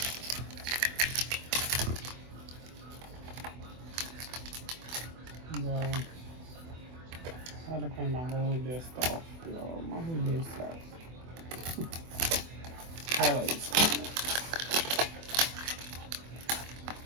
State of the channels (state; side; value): late; left; 24 ms